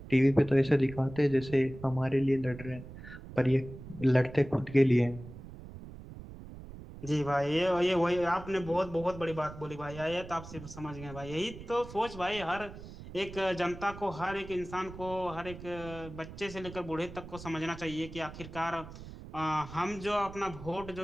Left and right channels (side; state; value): right; noise; rumble, 14 dB below the sound